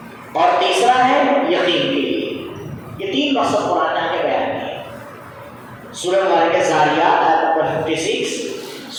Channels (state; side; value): identical; both; correlation 1.00